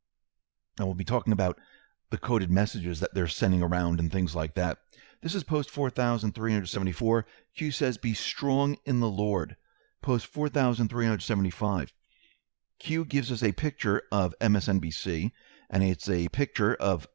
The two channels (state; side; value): silent; left; digital silence